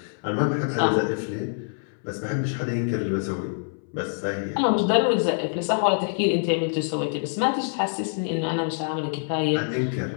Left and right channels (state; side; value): silent; right; 61 dB below the other